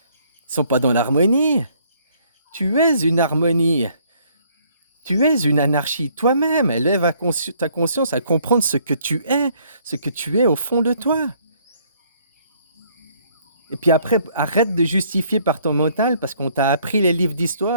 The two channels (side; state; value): both; inverted; correlation -0.64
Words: ils sont pas dans l'harmonie. Tu es une harmonie, tu es une anarchie toi-même. Élève ta conscience à comprendre ce que tu es au fond de toi. Et puis après, arrête de justifier par ton mental parce qu'on t'a appris les livres